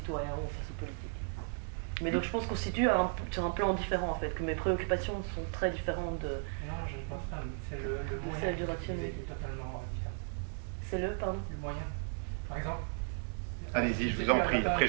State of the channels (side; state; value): left; silent; 54 dB below the other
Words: ont face aux politiques. Mais donc je pense qu'on se situe sur un plan différent en fait, que mes préoccupations sont très différentes de... Non, je ne pense pas, c'est le moyen qui est totalement différent. C'est pardon? Le moyen. Par exemple... Allez-y, je vous en prie, après